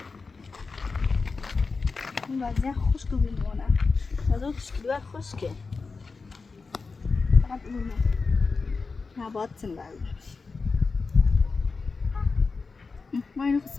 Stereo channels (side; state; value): right; quieter; 4.4 dB